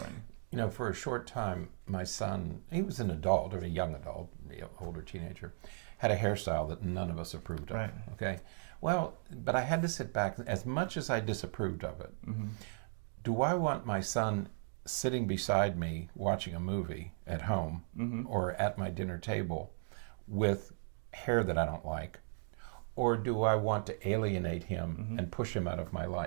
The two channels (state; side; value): silent; left; digital silence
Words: For a short time, my son, he was an adult, or a young adult, older teenager, had a hairstyle that none of us approved of. Right. Okay? Well, but I had to sit back, as much as I disapproved of it, do I want my son sitting beside me watching a movie at home or at my dinner table with hair that I don't like? Or do I want to alienate him and push him out of my